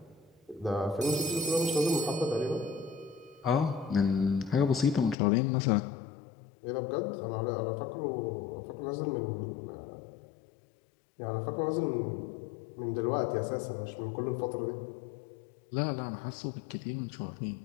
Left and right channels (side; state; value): right; drops out; at 5.2 s